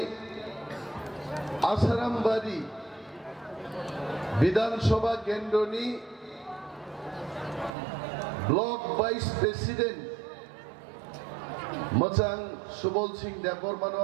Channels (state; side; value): drops out; left; at 7.7 s